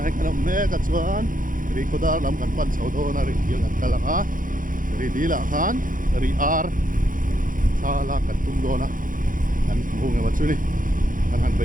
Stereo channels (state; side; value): late; left; 0.39 ms